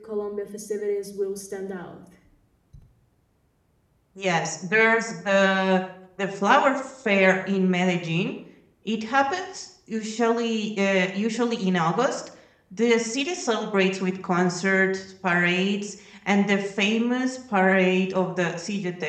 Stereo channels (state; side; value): identical; both; correlation 1.00